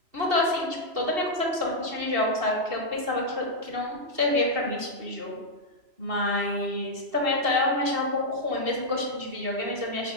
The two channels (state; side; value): late; left; 2.7 ms